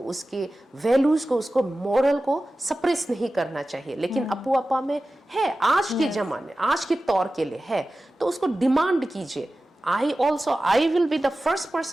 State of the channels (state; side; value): normal; both; correlation 0.95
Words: उसके वैल्यूज को, उसको मोरल को सप्रेस नहीं करना चाहिए। लेकिन अपुआपा में है, आज के जमाने, आज के तौर के लिए है, तो उसको डिमांड कीजिए। I will be the first